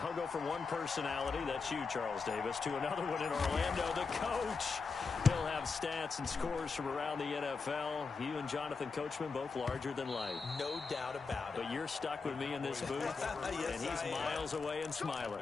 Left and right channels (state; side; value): quieter; right; 4.7 dB